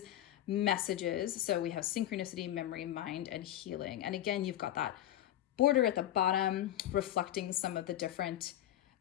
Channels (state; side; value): quieter; right; 12.7 dB